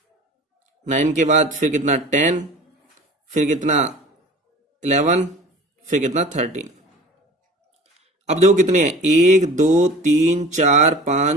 9 के बाद फिर कितना 10, फिर कितना 11, फिर कितना 13। अब देखो कितने हैं 1 2 3 4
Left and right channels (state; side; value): normal; both; correlation 0.41